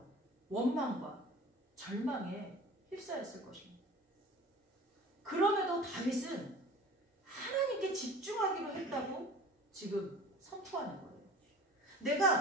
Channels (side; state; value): both; normal; correlation 0.42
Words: 원망과 절망에 휩싸였을 것입니다. 그럼에도 다윗은 하나님께 집중하기로 했다고 지금 선포하는 거예요.